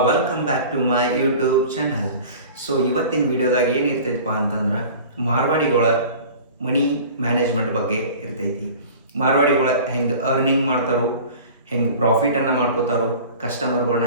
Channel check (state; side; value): inverted; both; correlation -0.41